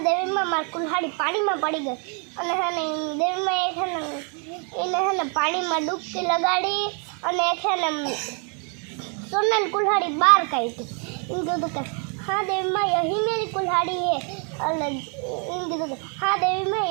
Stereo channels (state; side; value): quieter; left; 38.7 dB